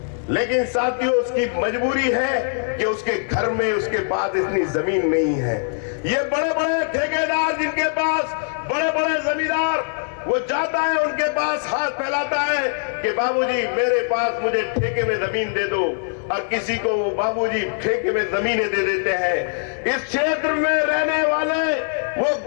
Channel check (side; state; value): right; silent; digital silence